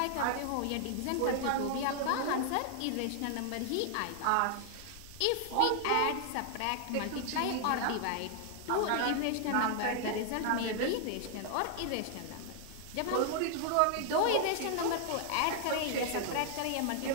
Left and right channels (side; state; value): both; different; correlation 0.00